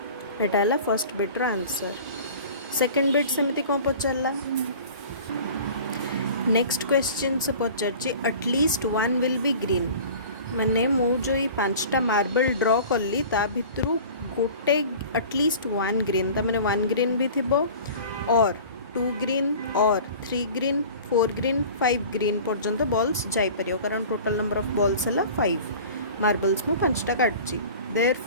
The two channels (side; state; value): both; inverted; correlation -0.41